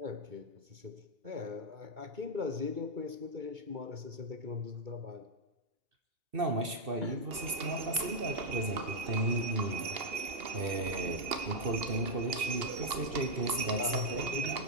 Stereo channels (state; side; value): late; left; 2.6 ms